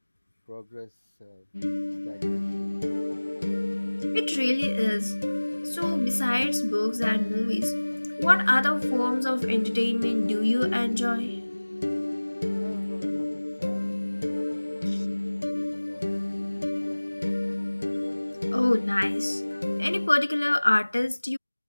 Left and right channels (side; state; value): both; inverted; correlation -1.00